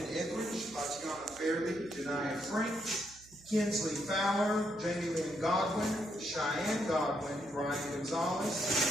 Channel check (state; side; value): noise; right; hum, 24 dB below the sound